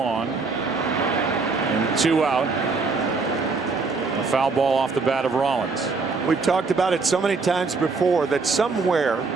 and 2 out. A foul ball off the bat of Rollins. We've talked about it so many times before that somewhere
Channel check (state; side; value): quieter; left; 4.3 dB